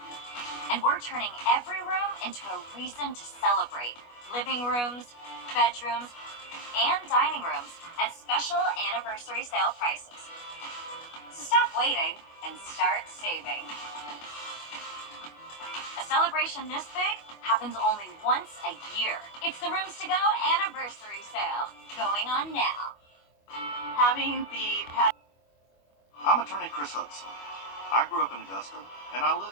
And we're turning every room into a reason to celebrate. Living rooms, bedrooms, and dining rooms at special anniversary sale prices. So stop waiting and start saving. A celebration this big happens only once a year. It's the Rooms to Go anniversary sale, going on now. Having the I'm attorney Chris Hudson. I grew up in Augusta, and I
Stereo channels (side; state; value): right; late; 25 ms